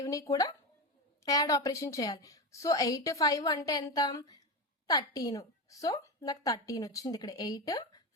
కూడా యాడ్ ఆపరేషన్ చేయాలి. సో 8 5 అంటే ఎంత 13. సో నాకు 13 వచ్చింది. ఇక్కడ 8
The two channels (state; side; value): normal; both; correlation 0.18